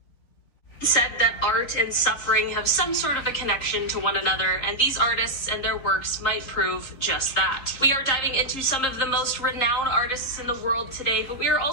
Said that art and suffering have some sort of a connection to one another, and these artists and their works might prove just that. We are diving into some of the most renowned artists in the world today, but we are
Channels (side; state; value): right; late; 3.8 ms